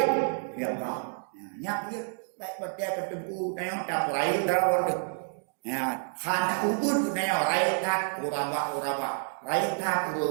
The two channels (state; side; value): silent; left; 57 dB below the other